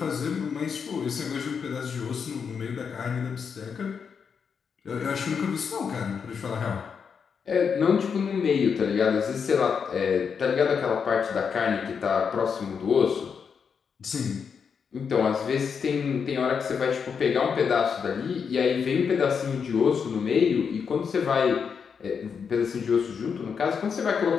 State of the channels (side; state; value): right; quieter; 6.4 dB